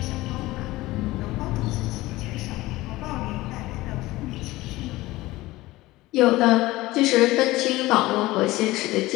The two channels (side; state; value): right; quieter; 18.6 dB